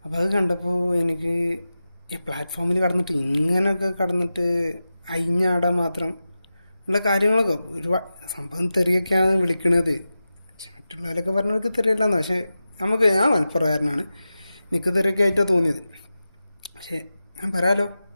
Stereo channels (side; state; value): both; inverted; correlation -0.93